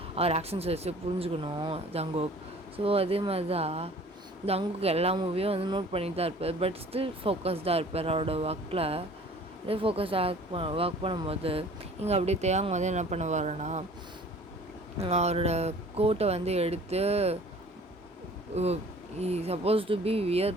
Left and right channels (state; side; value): normal; both; correlation 0.49